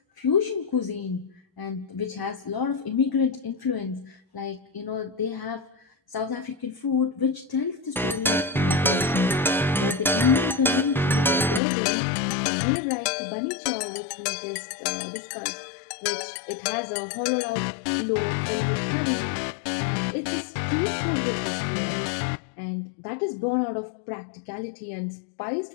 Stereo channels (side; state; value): right; drops out; at 11.6 s